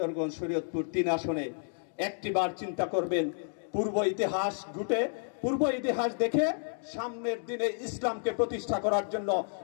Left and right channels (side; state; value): right; silent; digital silence